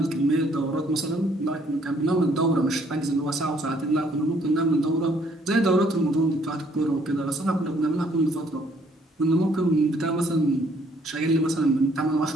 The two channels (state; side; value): normal; both; correlation 0.64